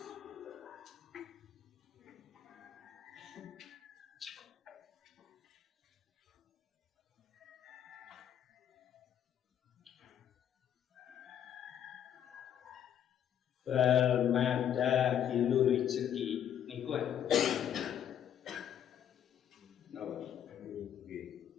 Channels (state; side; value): quieter; right; 9.7 dB